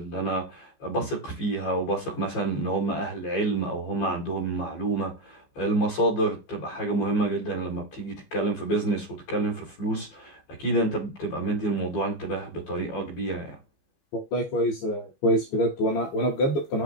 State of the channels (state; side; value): late; right; 15 ms